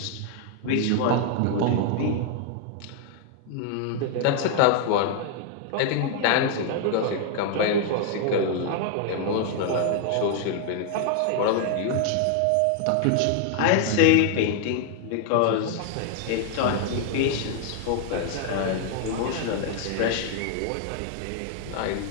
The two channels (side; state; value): both; different; correlation 0.00